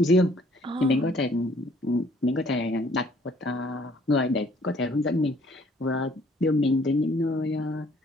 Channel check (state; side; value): normal; both; correlation 0.60